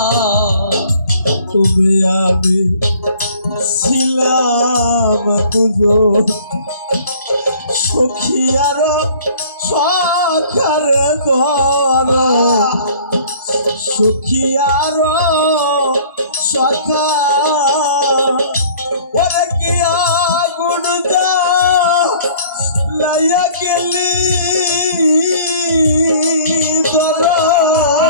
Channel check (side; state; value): both; inverted; correlation -0.52